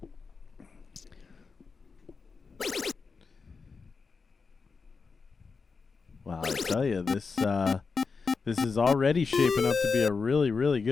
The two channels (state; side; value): quieter; right; 4.8 dB